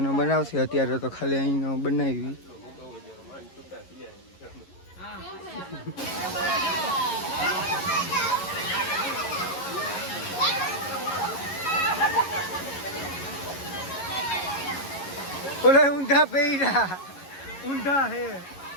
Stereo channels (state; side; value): late; right; 11 ms